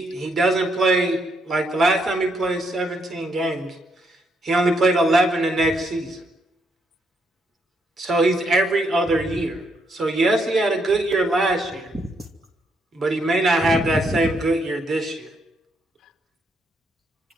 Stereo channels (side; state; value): both; normal; correlation 0.76